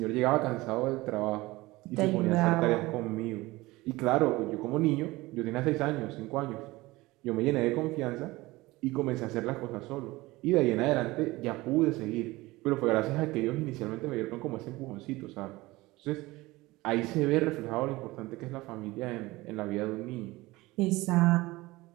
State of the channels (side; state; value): left; quieter; 20.2 dB